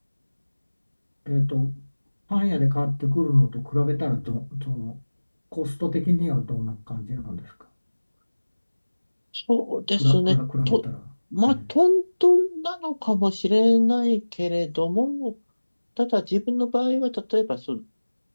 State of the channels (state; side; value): inverted; both; correlation -1.00